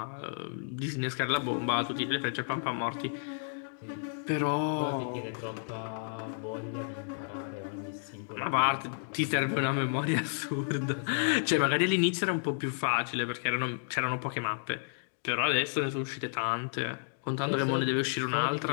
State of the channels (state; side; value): silent; right; digital silence